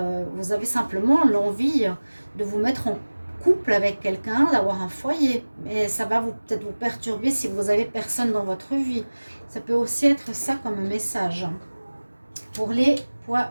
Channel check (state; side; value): inverted; both; correlation -1.00